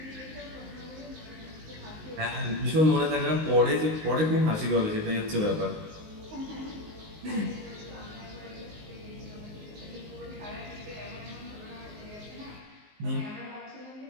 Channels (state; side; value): late; left; 19 ms